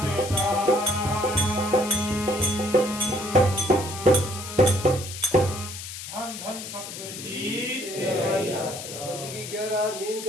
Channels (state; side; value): noise; left; hiss, 10 dB below the sound